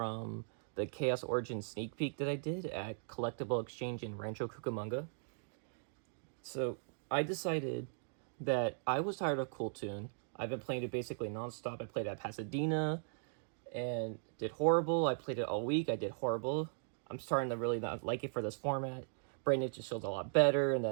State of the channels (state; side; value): silent; left; digital silence